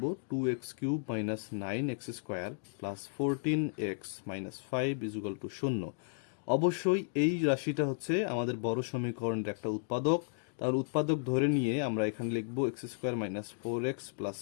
2x cube minus 9x square plus 14x minus 5 equal to 0। অবশ্যই এই রাশিটা হচ্ছে আমাদের বড় সমীকরণের একটা উৎপাদক। তাহলে উৎপাদক ধরে নিয়ে আমরা এখানে লিখব x square minus 4x plus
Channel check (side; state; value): right; silent; digital silence